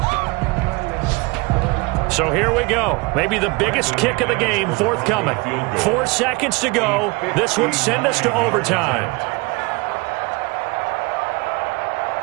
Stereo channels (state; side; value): quieter; left; 26.0 dB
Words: So here we go. Maybe the biggest kick of the game forthcoming. 4 seconds to go. This would send us to overtime.